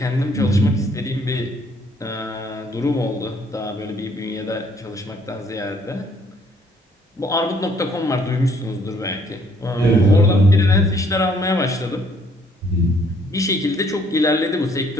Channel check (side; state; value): both; normal; correlation 0.64